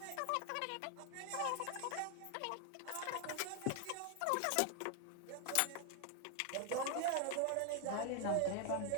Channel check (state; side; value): different; both; correlation 0.00